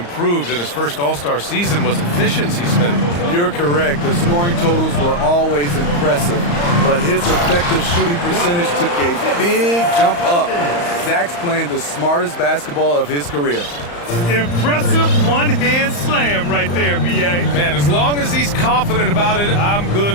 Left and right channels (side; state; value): right; late; 35 ms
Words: in his first All-Star season was efficiency, Smitty. You're correct. The scoring totals were always impressive, but his effective shooting percentage took a big jump up. Zach's playing the smartest basketball of his career. Impressive one-hand slam right there, B.A. Man, as long as he's confident about it, I'm good